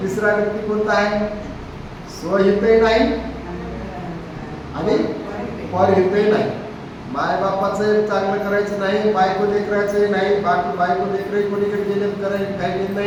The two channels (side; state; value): both; identical; correlation 1.00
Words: तिसरा व्यक्ती कोणता आहे, स्वहितही नाही आणि परहितही नाही. मायबापाचं चांगलं करायचं नाही, बायको लेकरायचंही नाही, बायको लेकरही कोणीकडे गेले करायचं काही घेत